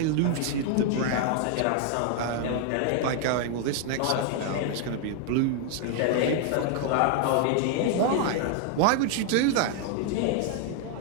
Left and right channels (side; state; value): both; different; correlation 0.00